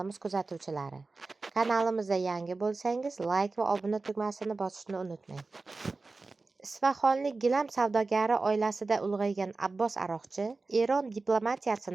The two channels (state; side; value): quieter; left; 3.7 dB